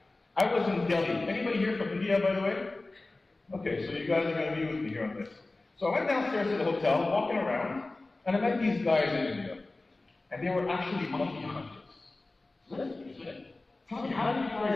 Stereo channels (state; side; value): quieter; right; 3.1 dB